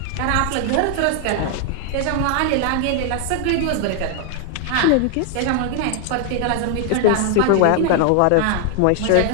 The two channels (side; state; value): both; different; correlation 0.00